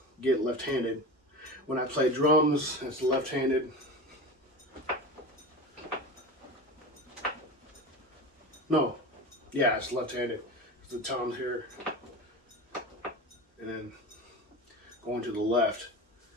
get left-handed. When I play drums, it's left-handed. No, yeah, it's left-handed. The toms here, and then going to the left.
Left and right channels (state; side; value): normal; both; correlation 0.29